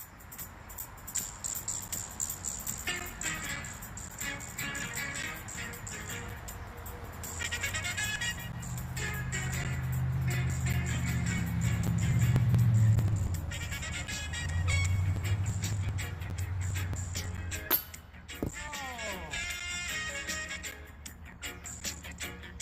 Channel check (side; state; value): both; identical; correlation 1.00